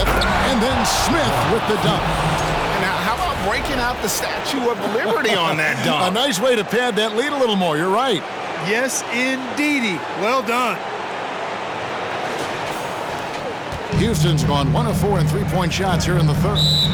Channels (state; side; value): identical; both; correlation 1.00